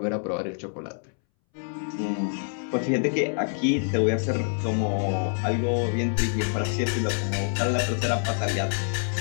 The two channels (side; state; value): right; silent; 61 dB below the other